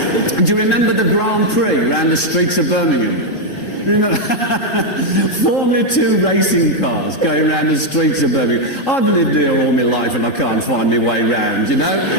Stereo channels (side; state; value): right; late; 3.7 ms